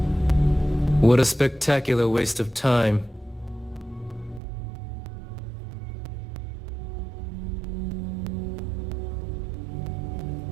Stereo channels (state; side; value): drops out; left; at 4.4 s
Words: What a spectacular waste of time.